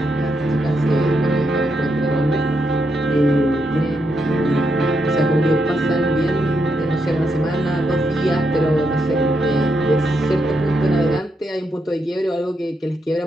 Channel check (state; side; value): normal; both; correlation 0.82